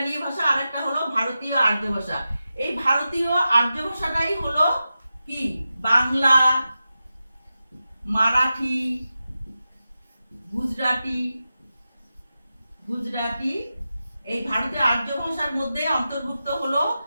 ভাষা, আরেকটা হলো ভারতীয় আর্য ভাষা। এই ভারতীয় আর্য ভাষাটাই হলো কি বাংলা, মারাঠি, গুজরাটি। এই ভারতীয় আর্য ভাষার মধ্যে অন্তর্ভুক্ত হলো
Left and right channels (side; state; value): both; inverted; correlation -0.92